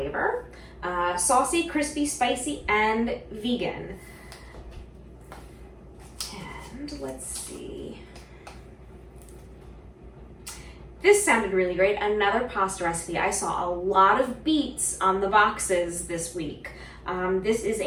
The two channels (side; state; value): both; identical; correlation 1.00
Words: Saucy, crispy, spicy, and vegan. And let's see. This sounded really great. Another pasta recipe. I saw a lot of beets on the boxes this week. This is